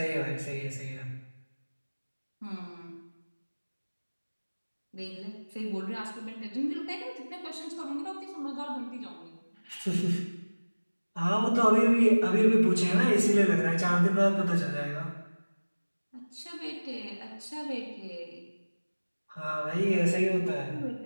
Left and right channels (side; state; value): both; inverted; correlation -1.00